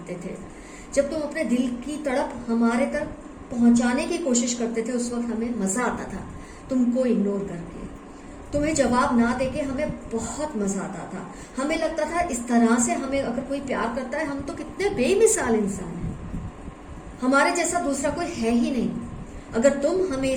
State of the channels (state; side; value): identical; both; correlation 1.00